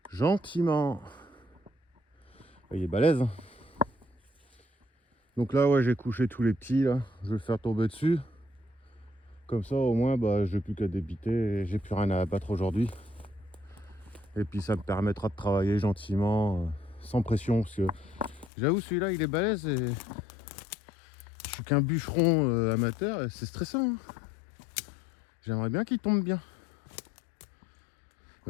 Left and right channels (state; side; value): drops out; right; at 18.5 s